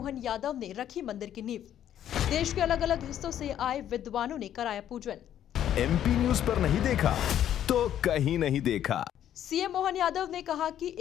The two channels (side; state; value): right; quieter; 10.8 dB